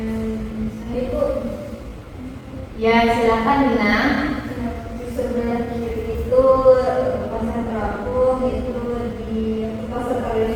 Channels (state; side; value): identical; both; correlation 1.00